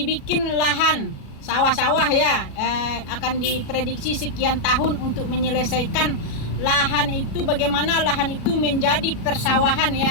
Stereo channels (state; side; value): late; right; 37 ms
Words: lahan sawah-sawah ya, akan diprediksi sekian tahun untuk menyelesaikan lahan itu, bagaimana lahan itu menjadi persawahan